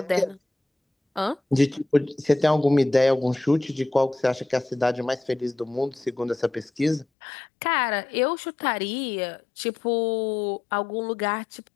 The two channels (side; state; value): right; drops out; at 7.1 s